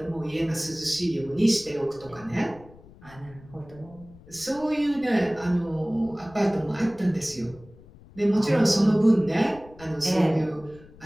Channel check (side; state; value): left; noise; rumble, 22 dB below the sound